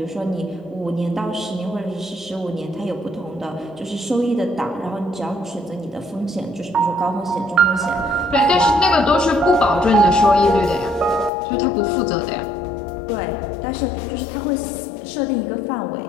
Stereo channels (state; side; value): drops out; right; at 11.3 s